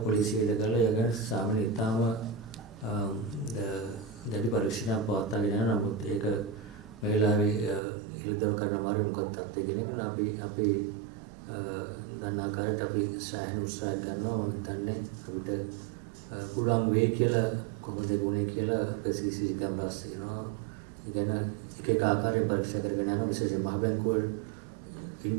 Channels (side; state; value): left; drops out; at 7.8 s